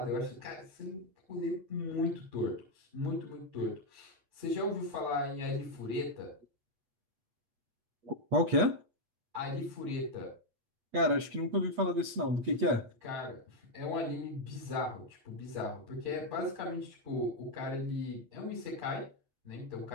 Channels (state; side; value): late; left; 8.3 ms